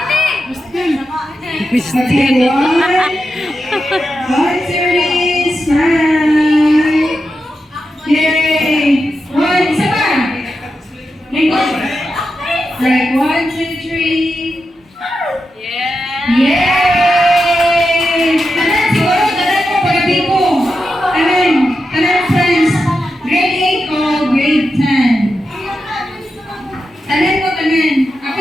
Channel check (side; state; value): both; normal; correlation 0.88